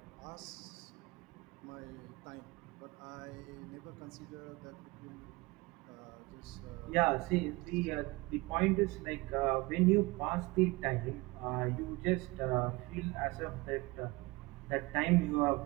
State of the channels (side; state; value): left; quieter; 22.9 dB